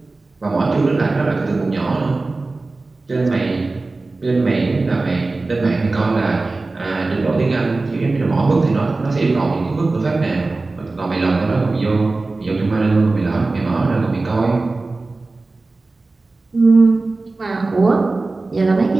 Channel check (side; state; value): left; quieter; 3.4 dB